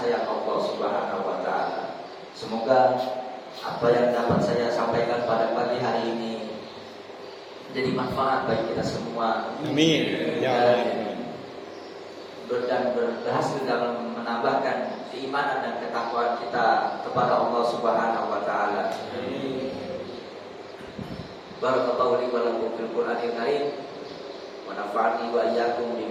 Allah Subhanahu wa taala. Semoga apa yang dapat saya sampaikan pada pagi hari ini menjadi manfaat bagi kita semua. Amin. Ya Allah. Dan berhasil dalam menambahkan keimanan dan ketakwaan kita kepada Allah Subhanahu wa taala. Barakallahu li wa lakum fil Qur'anil Karim wa nafa'ani wa iyyakum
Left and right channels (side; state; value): both; identical; correlation 1.00